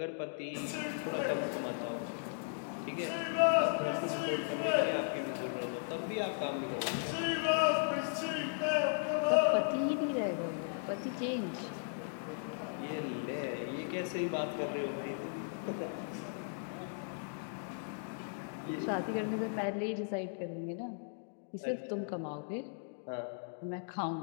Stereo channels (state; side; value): silent; right; digital silence